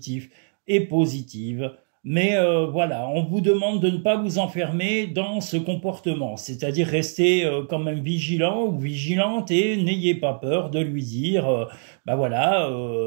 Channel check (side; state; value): left; silent; 63 dB below the other